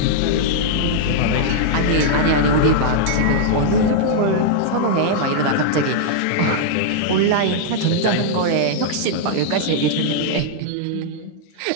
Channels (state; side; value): different; both; correlation -0.01